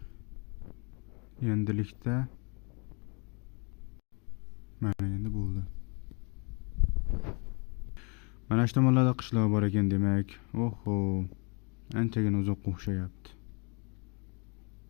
Endilikda mana endi bo'ldi. Mana shu tomonlarda qishloq bor ekan demak. Oho, anchagina uzoqqa o'xshayapti.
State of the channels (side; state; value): right; quieter; 33.2 dB